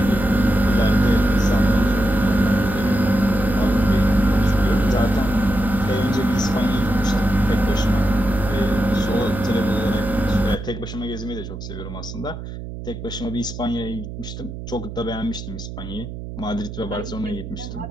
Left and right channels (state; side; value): noise; right; hum, 10 dB below the sound